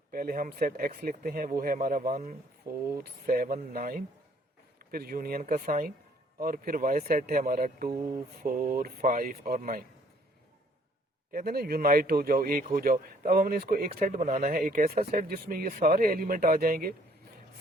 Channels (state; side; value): normal; both; correlation 0.62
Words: पहले हम सेट x लिखते हैं, वो है हमारा 1, 4, 7, 9, फिर यूनियन का साइन, और फिर y सेट है हमारा 2, 4, 5 और 9। कहते हैं ना यूनाइट हो जाओ, एक हो जाओ। तो अब हमने इसको एक सेट बनाना है, एक ऐसा सेट जिसमें ये सारे एलिमेंट आ जाएंगे,